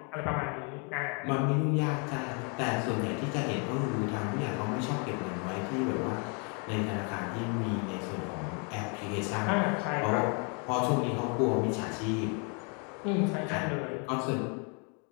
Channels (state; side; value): quieter; right; 36.0 dB